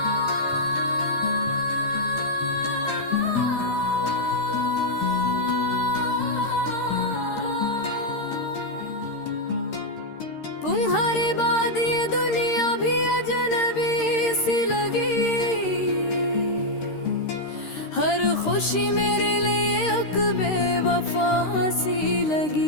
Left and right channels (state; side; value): late; right; 13 ms